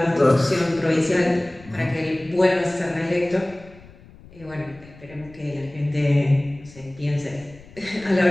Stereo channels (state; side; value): noise; left; rumble, 22 dB below the sound